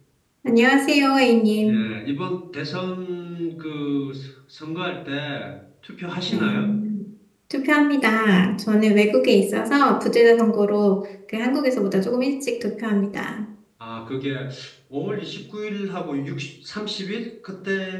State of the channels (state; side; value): identical; both; correlation 1.00